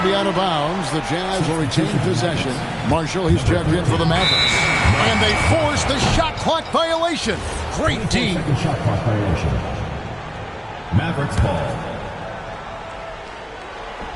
to be out of bounds. The Jazz will retain possession. Marshall, he's checked in for the Mavericks. And they force the shot clock violation. Great D. Second shot clock violation. Mavericks ball.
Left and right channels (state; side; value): identical; both; correlation 1.00